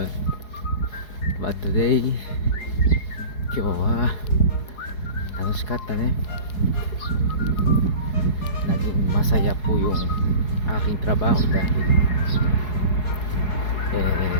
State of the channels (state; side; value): late; right; 4.7 ms